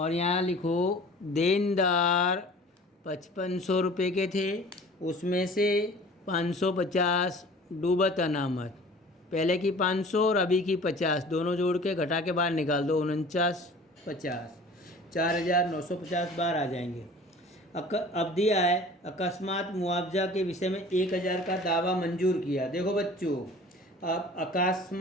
यहाँ लिखो देनदार 5500 रुपये के थे, उसमें से 550 डूबत अनामत, पहले की 500 और अभी की 50, दोनों जोड़ के घटा के बाहर निकाल दो 49,50, 4,950 बाहर आ जाएंगे। अब दिया है अकस्मात मुआवजा के विषय में 1,000 का दावा मंजूर किया। देखो बच्चों, अब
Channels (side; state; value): both; normal; correlation 0.45